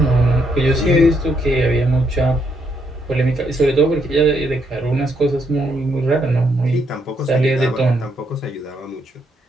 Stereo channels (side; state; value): both; normal; correlation 0.75